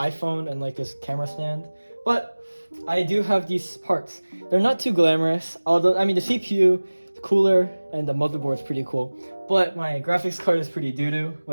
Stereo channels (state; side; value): inverted; both; correlation -1.00